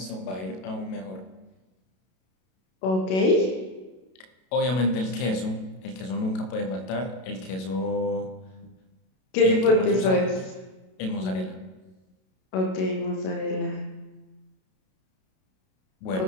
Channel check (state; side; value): late; right; 32 ms